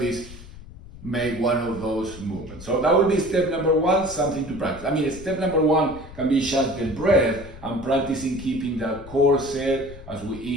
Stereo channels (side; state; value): left; noise; rumble, 16 dB below the sound